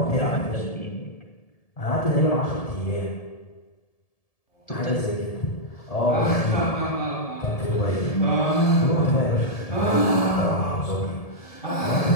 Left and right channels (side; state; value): right; late; 1.7 ms